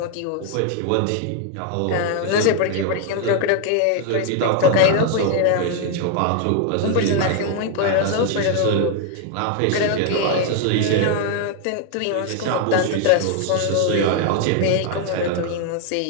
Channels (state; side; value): different; both; correlation 0.00